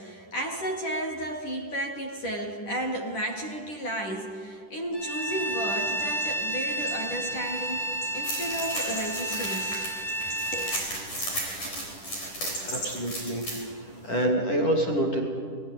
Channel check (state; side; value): late; right; 10 ms